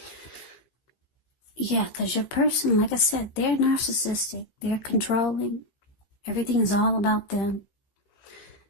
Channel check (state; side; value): late; right; 15 ms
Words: Yeah, because your person, like I said, they're narcissistic. They're controlling. Everything is all about them.